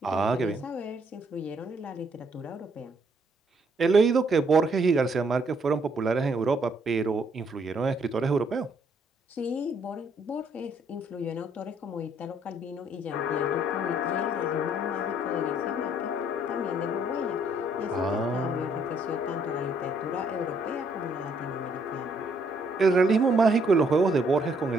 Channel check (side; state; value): both; normal; correlation 0.68